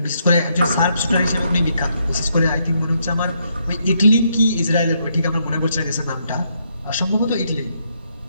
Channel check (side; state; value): both; inverted; correlation -0.76